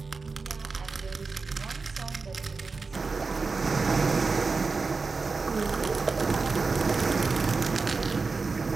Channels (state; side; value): quieter; left; 4.3 dB